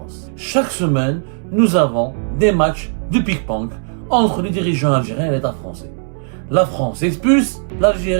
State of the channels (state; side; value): silent; left; 67 dB below the other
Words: Chaque semaine, nous avons des matchs de pique-ponk entre les dirigeants algériens et l'État français. La France expulse,